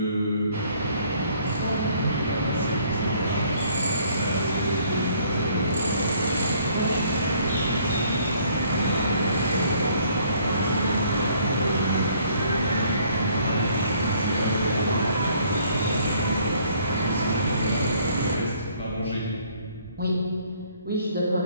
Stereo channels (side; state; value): both; inverted; correlation -0.61